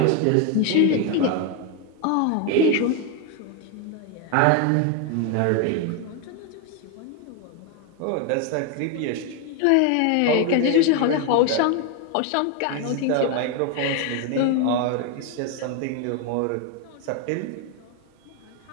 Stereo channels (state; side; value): different; both; correlation 0.01